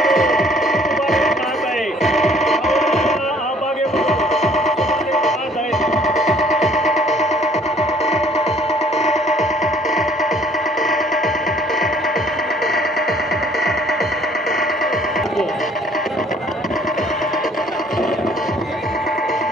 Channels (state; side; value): normal; both; correlation 0.58